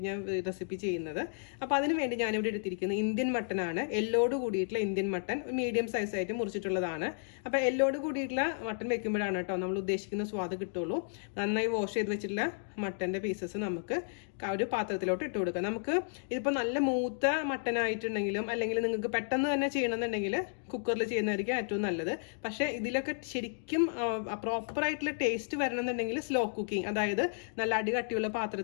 ഞാൻ റെസിപ്പി ചെയ്യുന്നത്. അപ്പോൾ അതിന് വേണ്ടി ഞാനിവിടെ എടുത്തിരിക്കുന്നത് ഇന്ത്യൻ മട്ടനാണ്. എല്ലോട് കൂടിയിട്ടുള്ള ഇന്ത്യൻ മട്ടൻ, മീഡിയം സൈസ് ആയിട്ട് മുറിച്ചിട്ടുള്ളതാണ്. അപ്പോൾ എല്ലോട് കൂടിയിട്ടുള്ള മട്ടൻ വെക്കുമ്പോഴാണ് കേട്ടോ നമ്മൾ ഉദ്ദേശിക്കുന്ന സ്വാദ് കിട്ടുള്ളൂ. നന്നായി വാഷ് ചെയ്ത് വെച്ചിട്ടുള്ള മട്ടന്റെ പീസസ് നമുക്ക് ഒരു പാത്രത്തിലോട്ട് ഇട്ട് കൊടുക്കാം. നമുക്ക് ഇതിപ്പോൾ നല്ല മൂത്ത മട്ടൻ ആയിട്ടുണ്ടെങ്കിലും അല്ലെങ്കിൽ നിങ്ങൾക്ക് പെട്ടെന്ന് തന്നെ ചെയ്യണമെന്നുണ്ടെങ്കിൽ കുക്കറിൽ ചെയ്യുന്നതായിരിക്കും ഏറ്റവും നല്ലത്. പക്ഷേ ഇതിലൊക്കെ ശരിക്കും പ്രോപ്പർ ആയിട്ടുള്ള ടേസ്റ്റ് വരണമെന്നുണ്ടെങ്കിൽ സ്ലോ കുക്കിംഗ്, അതായത് നല്ല അടികട്ടിയുള്ള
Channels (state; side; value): silent; right; digital silence